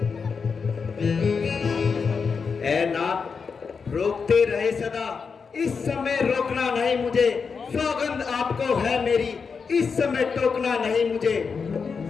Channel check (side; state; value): right; quieter; 5.5 dB